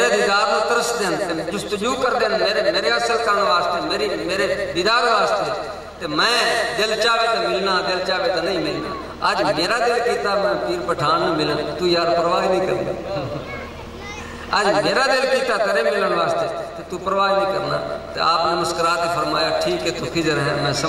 دیدار میں ترس دیں جستجو کر دیں میرے اصل کان واسطے میرے دیدار واسطے تو میں دل چاہے تو ملنا دل چاہے تو نہیں ملنا آج میرا دل کیتا میں پیر پٹھان میں ملن تو یار پرواہ نہیں کرنا آج میرا دل کیتا تیرے ملن واسطے تو پرواہ نہیں کرنا تو آپ نے مسکرات فرمایا ٹھیک ہے تو خضر ہے میں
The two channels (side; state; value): both; identical; correlation 1.00